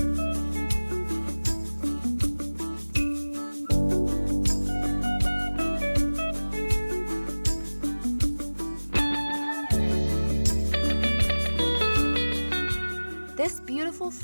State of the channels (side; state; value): both; inverted; correlation -1.00